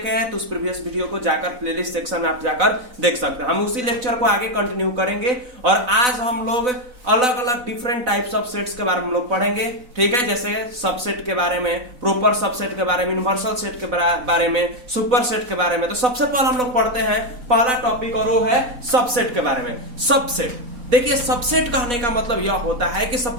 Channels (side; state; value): left; late; 4.0 ms